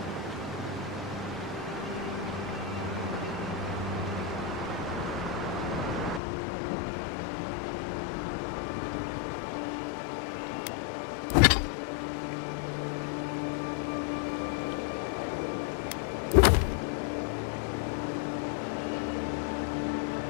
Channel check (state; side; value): drops out; right; at 6.2 s